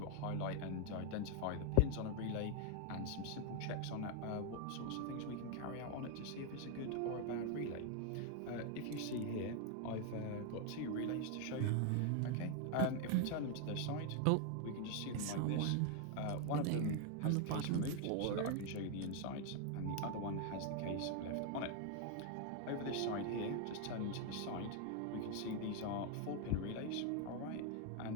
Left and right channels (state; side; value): different; both; correlation 0.01